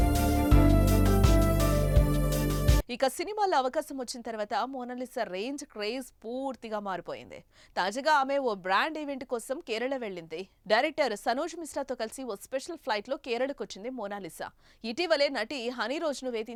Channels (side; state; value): both; identical; correlation 1.00